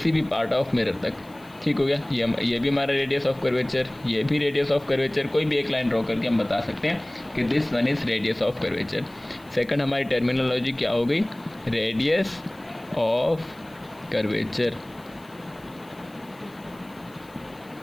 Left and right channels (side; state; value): left; noise; hiss, 28 dB below the sound